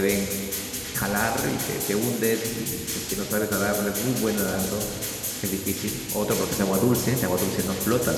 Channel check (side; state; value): both; identical; correlation 1.00